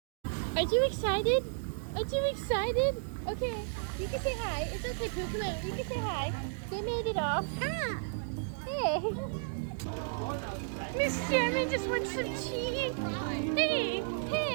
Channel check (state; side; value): silent; left; digital silence